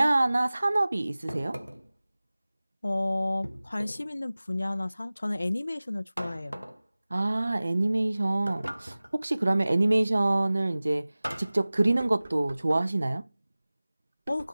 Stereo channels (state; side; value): inverted; both; correlation -0.98